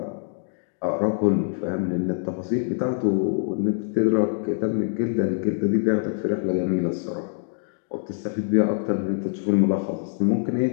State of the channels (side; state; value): right; silent; digital silence